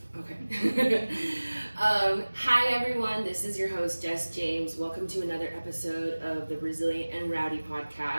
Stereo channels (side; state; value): both; inverted; correlation -1.00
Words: Okay. Hi everyone, this is your host Jess James. Welcome to another episode of the Resilient and Rowdy